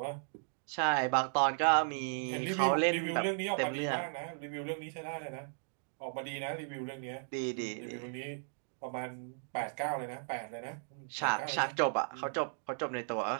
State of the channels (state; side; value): silent; left; digital silence